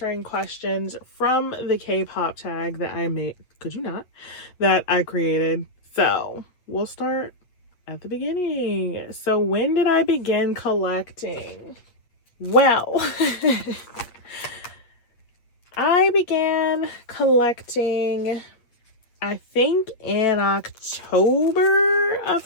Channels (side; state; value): right; late; 8.5 ms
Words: questions from the K-pop tag that I made. Could you not? That I created. So we'll start at the beginning. So when did I begin collecting? Well, I began collecting, I think in October of